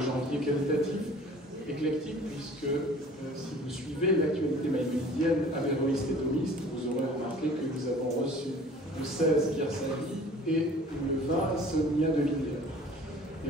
janvier qualitatif, éclectique, puisque si vous suivez l'actualité maïmonidienne, avéroïste et thomiste, vous aurez remarqué que nous avons reçu le 16 Pierre Savy et le 20 Sonia de Villiers. Et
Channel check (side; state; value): both; normal; correlation 0.48